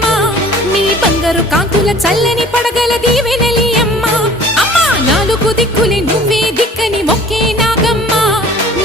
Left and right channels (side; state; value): both; normal; correlation 0.49